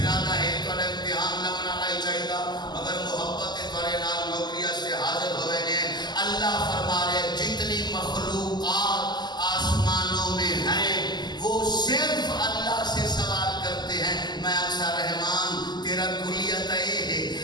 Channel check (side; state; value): right; late; 0.21 ms